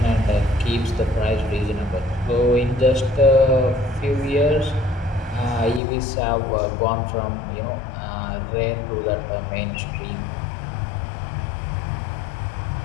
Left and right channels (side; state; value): right; drops out; at 5.8 s